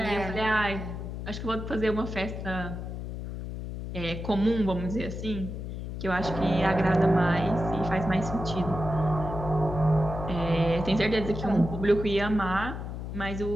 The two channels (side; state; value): left; noise; hum, 7 dB below the sound